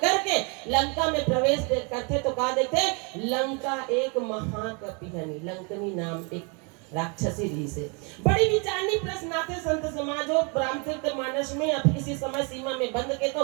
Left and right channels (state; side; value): quieter; left; 33.9 dB